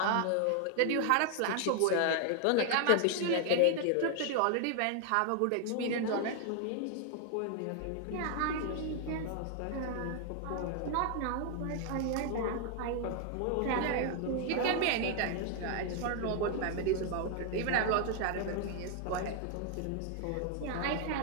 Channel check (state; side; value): different; both; correlation 0.00